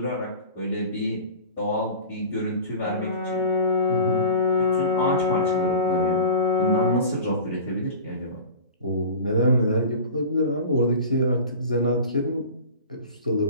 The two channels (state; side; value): inverted; both; correlation -0.37